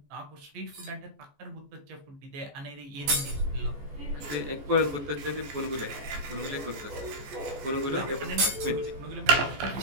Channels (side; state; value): left; late; 14 ms